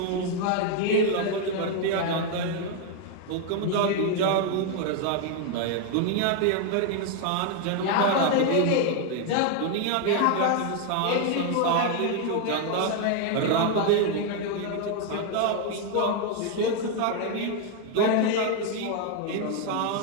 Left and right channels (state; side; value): different; both; correlation 0.01